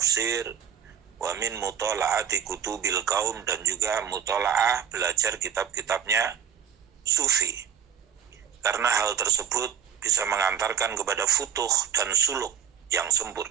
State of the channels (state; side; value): quieter; left; 8.8 dB